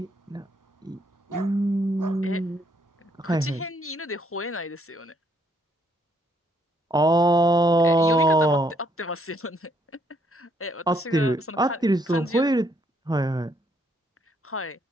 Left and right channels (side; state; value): both; normal; correlation 0.70